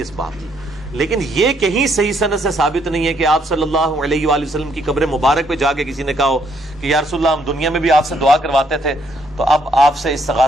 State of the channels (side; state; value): both; normal; correlation 0.70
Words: بات۔ لیکن یہ کہیں صحیح سند سے ثابت نہیں ہے کہ آپ صلی اللہ علیہ وآلہ وسلم کی قبر مبارک پہ جا کے کسی نے کہا ہو کہ یا رسول اللہ ہم دنیا میں بھی آپ سے دعا کرواتے تھے، تو اب آپ سے